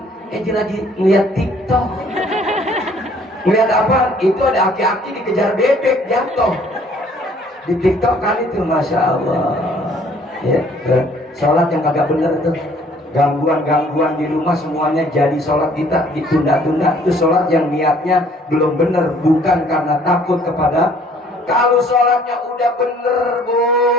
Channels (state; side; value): normal; both; correlation 0.58